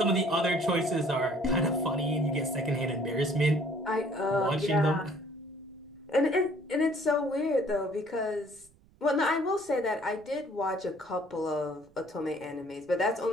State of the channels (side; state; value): right; noise; rumble, 29 dB below the sound